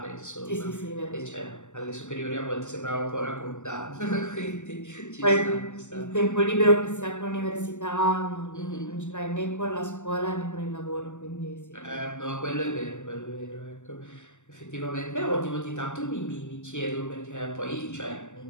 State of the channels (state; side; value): late; right; 0.84 ms